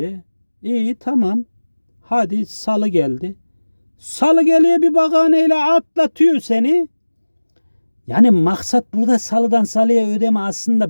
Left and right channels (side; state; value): both; inverted; correlation -1.00